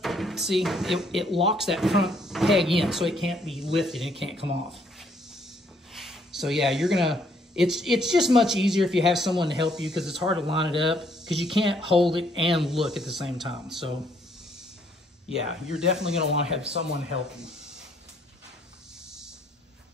see, it locks that front peg in, so it can't be lifted, and it can't come off. So yeah, it's just much easier if you have someone to help you, because it's hard to line it up, because you can't hold it and look at the same time. So yeah, you're definitely gonna wanna have someone help you.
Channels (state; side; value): normal; both; correlation 0.67